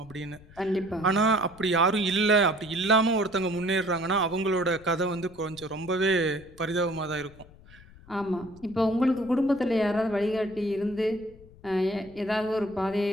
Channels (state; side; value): noise; left; rumble, 23 dB below the sound